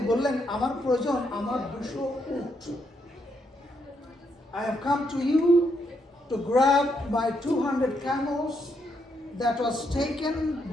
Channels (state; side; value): normal; both; correlation 0.77